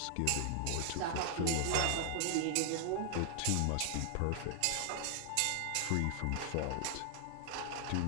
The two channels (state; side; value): different; both; correlation 0.00